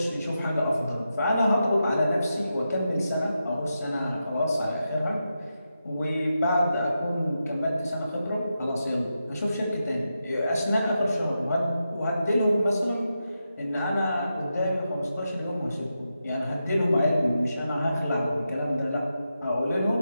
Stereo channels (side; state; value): both; inverted; correlation -0.88